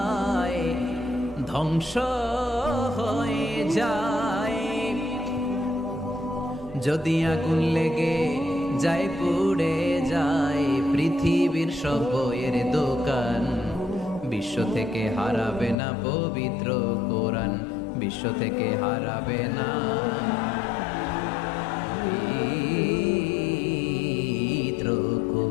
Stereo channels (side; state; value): right; drops out; at 15.8 s